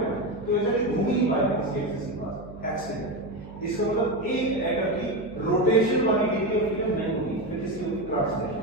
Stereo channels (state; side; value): noise; right; hum, 15 dB below the sound